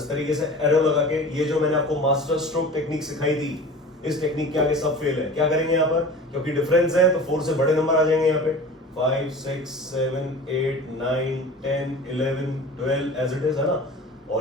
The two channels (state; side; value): normal; both; correlation 0.38